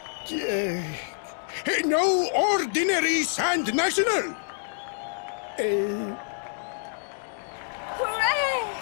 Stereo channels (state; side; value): silent; right; digital silence